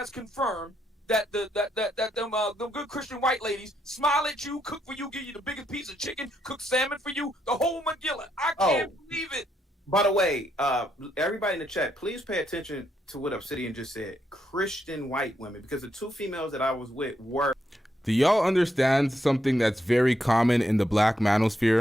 confirmed that them good Christian white ladies smile at you, cook for you, give you the biggest piece of chicken, cook salmon for you, the whole Magilla. I can't believe it. By the way, everybody in the chat, please pay attention to what Obsidian just said. Christian white women, because the two females that I was with were. Do y'all understand something that's very common in the black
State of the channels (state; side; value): normal; both; correlation 0.78